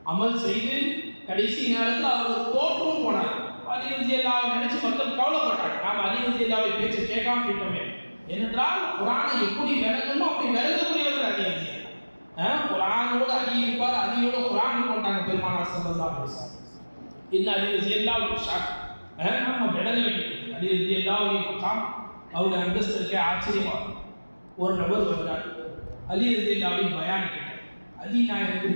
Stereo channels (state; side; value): inverted; both; correlation -1.00